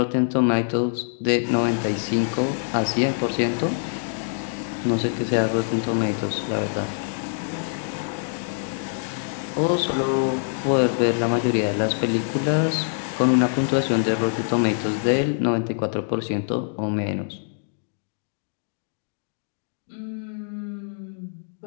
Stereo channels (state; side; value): silent; right; digital silence